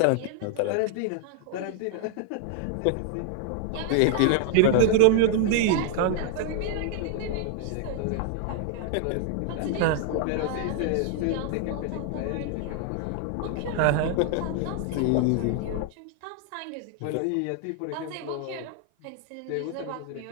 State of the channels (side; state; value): both; different; correlation 0.00